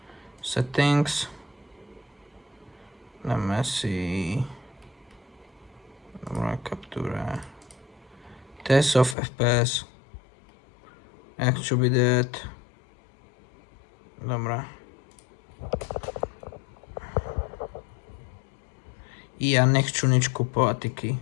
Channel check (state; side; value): drops out; right; at 9.2 s